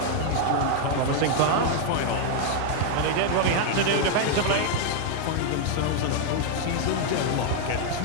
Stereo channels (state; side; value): different; both; correlation 0.00